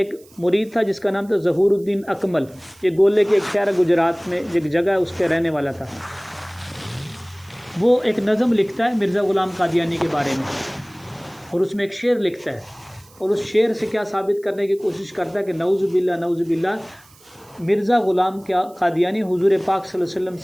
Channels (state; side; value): noise; right; hiss, 27 dB below the sound